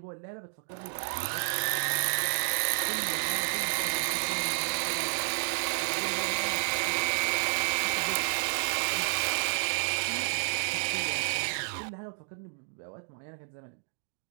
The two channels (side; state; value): left; silent; digital silence